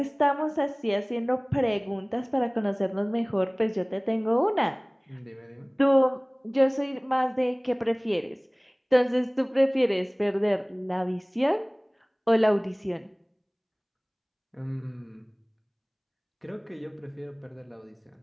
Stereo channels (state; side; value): identical; both; correlation 1.00